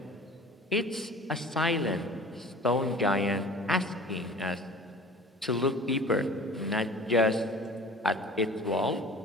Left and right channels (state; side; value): normal; both; correlation 0.43